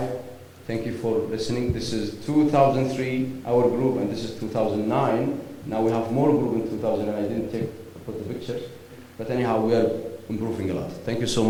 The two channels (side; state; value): both; identical; correlation 1.00